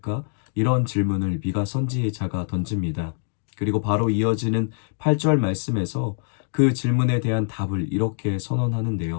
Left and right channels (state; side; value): silent; right; 63 dB below the other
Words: 이런 질문을 미가 선지자가 던집니다. 그리고 바로 이어지는 8절 말씀에서 그 질문에 대한 답을 이렇게